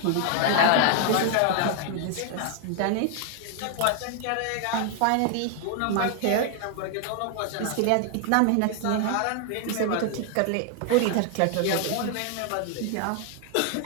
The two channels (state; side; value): different; both; correlation 0.00